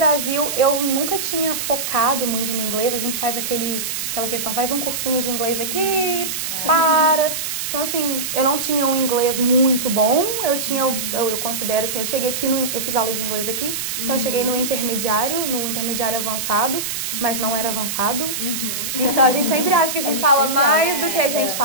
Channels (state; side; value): noise; right; hiss, 3 dB below the sound